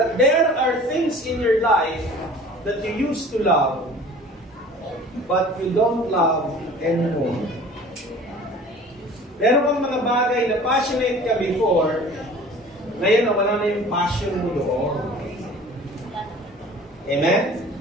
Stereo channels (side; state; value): both; normal; correlation 0.45